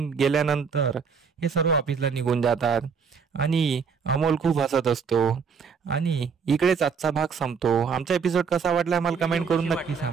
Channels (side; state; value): left; quieter; 6.0 dB